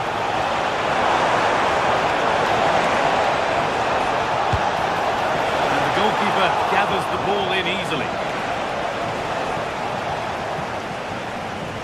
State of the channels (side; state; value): both; identical; correlation 1.00